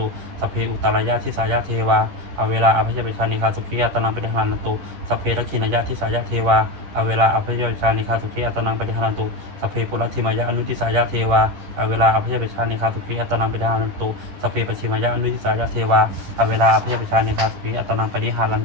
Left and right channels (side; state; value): left; late; 11 ms